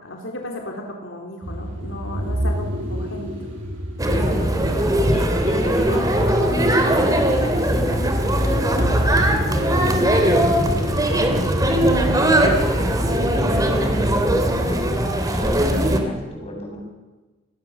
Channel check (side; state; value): both; normal; correlation 0.62